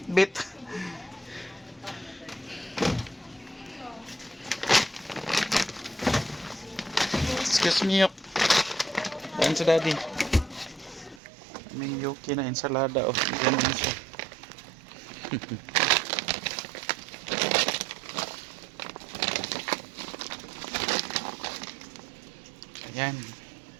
Excuse me, yok. Daan sa daddy. May yoki na ensalada. Oh, ganun siya. Ayan.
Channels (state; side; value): drops out; left; at 11.2 s